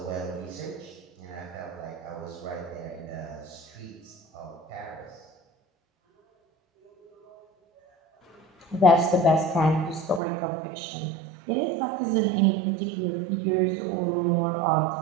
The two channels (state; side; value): drops out; left; at 10.2 s